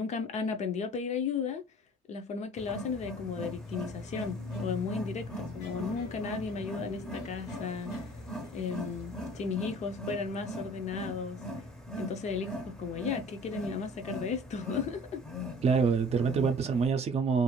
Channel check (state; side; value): normal; both; correlation 0.48